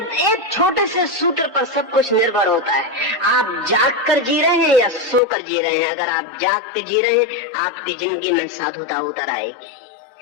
एक छोटे से सूत्र पर सब कुछ निर्भर होता है। आप जाग कर जी रहे हैं या सो कर जी रहे हैं। अगर आप जाग के जी रहे हैं आपकी जिंदगी में साधुता उतर आएगी।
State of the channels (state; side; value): drops out; right; at 5.2 s